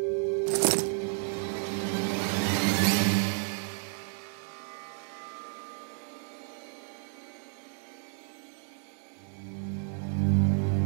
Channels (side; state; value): left; silent; 55 dB below the other